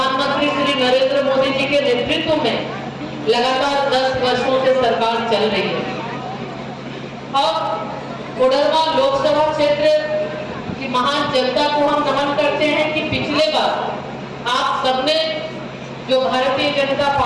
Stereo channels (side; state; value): both; identical; correlation 1.00